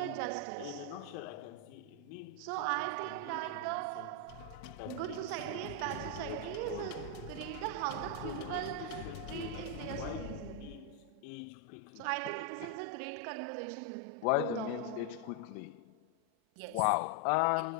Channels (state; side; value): different; both; correlation 0.00